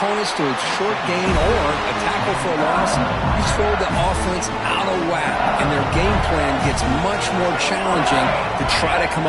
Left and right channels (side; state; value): both; identical; correlation 1.00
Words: to a short gain or a tackle for a loss, you throw the offense out of whack, and their game plan gets much more challenging to try to come